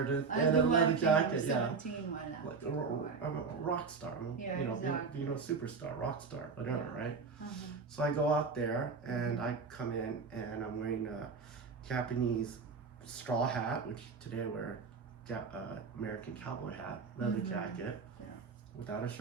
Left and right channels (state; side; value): quieter; left; 5.0 dB